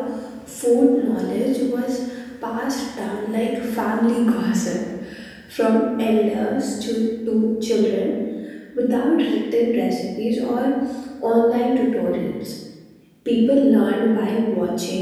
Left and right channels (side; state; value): both; identical; correlation 1.00